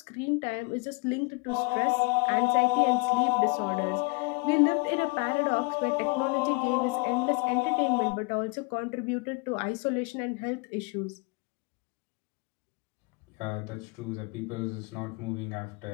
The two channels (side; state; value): right; quieter; 28.4 dB